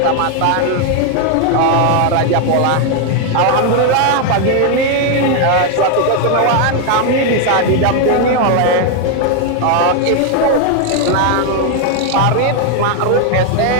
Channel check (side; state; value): both; different; correlation 0.01